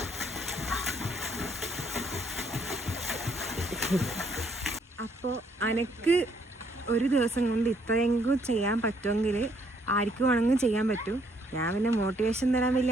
അപ്പോൾ അനക്ക് ഒരു ദിവസം കൊണ്ട് ഇത്രയെങ്കിലും ചെയ്യാൻ പറ്റുമെങ്കിൽ ആർക്കും വേണമെങ്കിലും ചെയ്യാൻ പറ്റും. ഞാൻ പിന്നെ മോട്ടിവേഷൻ തരാൻ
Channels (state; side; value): normal; both; correlation 0.68